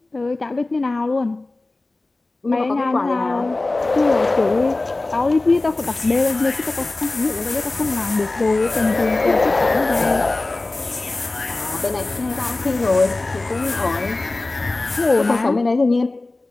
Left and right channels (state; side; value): quieter; right; 3.1 dB